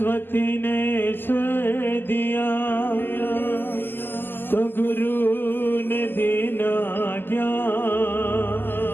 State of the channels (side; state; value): right; late; 0.095 ms